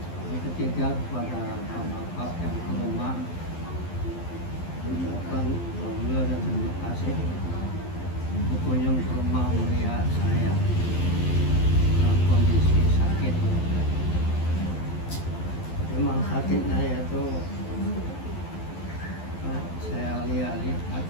Yang ketiga kepada Bapak yang ke rumah, ucapkan alhamdulillah dan terima kasih berkunjung ke rumah mulia saya dalam kondisi sakit. Memang sakitnya itu saya lihat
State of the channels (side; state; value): right; late; 12 ms